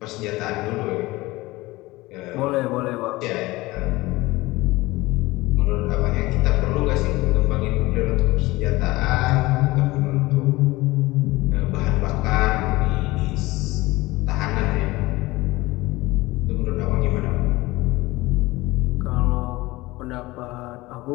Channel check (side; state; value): right; quieter; 20.2 dB